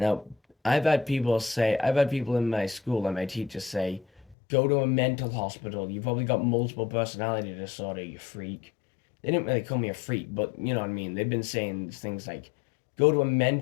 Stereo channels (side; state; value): right; drops out; at 4.4 s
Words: I've had people in my school and my teachers say, go to a mental hospital. You've probably got multiple personality disorder, you freak. They didn't really call me a freak, but you know what I mean. They've been saying things like, go to a